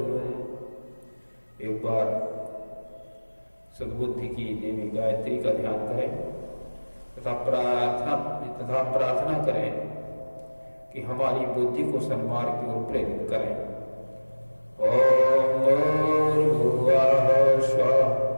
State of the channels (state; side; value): inverted; both; correlation -1.00